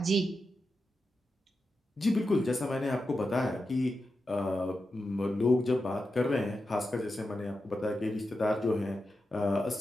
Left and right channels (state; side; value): normal; both; correlation 0.89